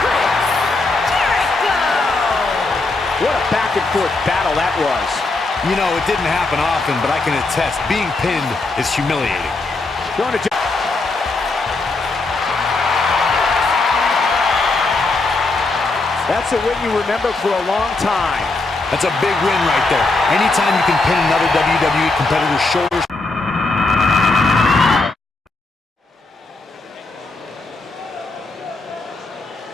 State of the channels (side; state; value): right; quieter; 3.4 dB